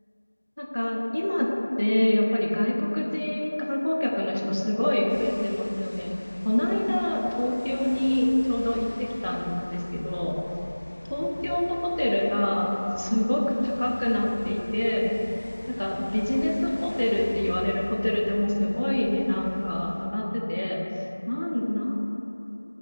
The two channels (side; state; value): both; inverted; correlation -1.00